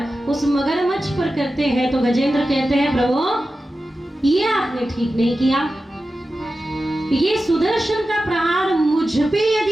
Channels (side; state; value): both; normal; correlation 0.93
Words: उस मगरमच्छ पर करते हैं तो गजेंद्र कहते हैं प्रभु ये आपने ठीक नहीं किया, ये सुदर्शन का प्रहार मुझ पे